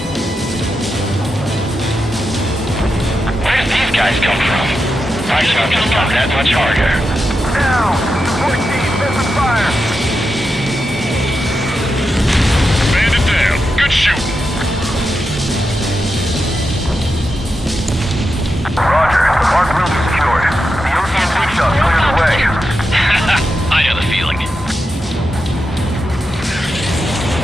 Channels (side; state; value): both; normal; correlation 0.88